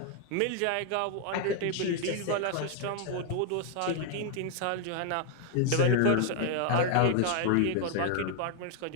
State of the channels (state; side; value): different; both; correlation 0.00